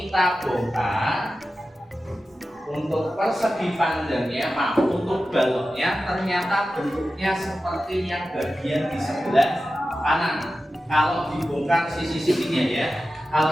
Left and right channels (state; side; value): normal; both; correlation 0.93